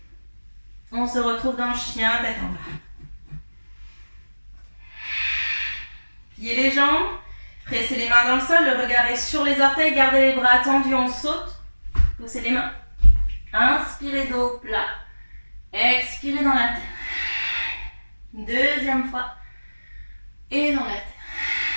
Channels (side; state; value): both; inverted; correlation -1.00